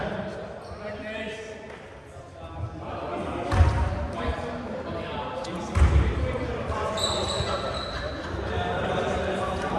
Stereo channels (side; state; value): both; identical; correlation 1.00